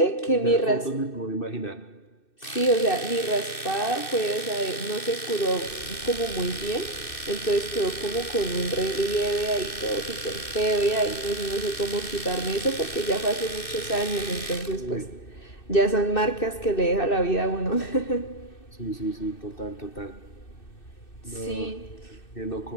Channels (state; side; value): late; right; 2.6 ms